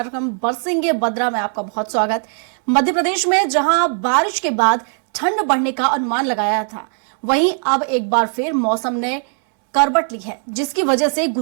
बरसेंगे बद्रा में आपका बहुत स्वागत। मध्य प्रदेश में जहां बारिश के बाद ठंड बढ़ने का अनुमान लगाया था, वहीं अब एक बार फिर मौसम ने करवट ली है, जिसकी वजह से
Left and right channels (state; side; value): silent; left; 56 dB below the other